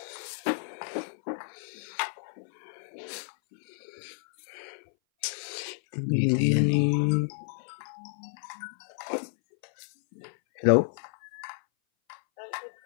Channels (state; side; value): silent; right; 57 dB below the other